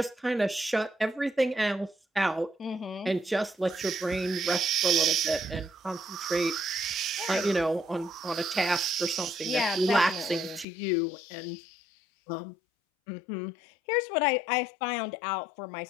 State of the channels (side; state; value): right; drops out; at 10.7 s